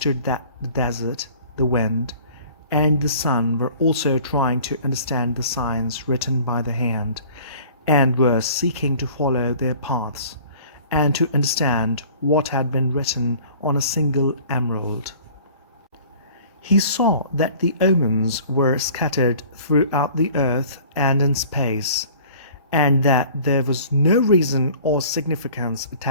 that the desert, the wind, and the sun were also trying to understand the signs written by the hand, and were seeking to follow their paths, and to understand what had been written on a single emerald. He saw that the omens were scattered throughout the earth and in space, and that there was no reason or significance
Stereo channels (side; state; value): both; inverted; correlation -0.49